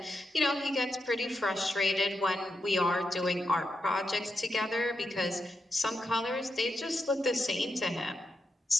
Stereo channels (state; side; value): normal; both; correlation 0.86